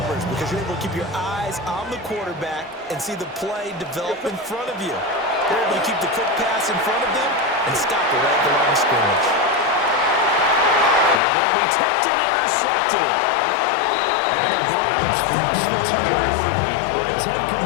because you're able to keep your eyes on the quarterback and see the play develop in front of you. You're able to keep the quick pass in front of them and stop it right at the line of scrimmage. Now that'll be tipped and intercepted. And the Browns force the turnover by 10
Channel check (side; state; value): right; drops out; at 11.2 s